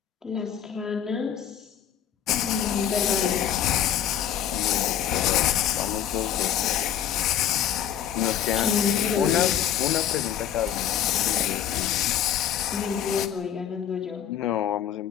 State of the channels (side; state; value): right; quieter; 10.0 dB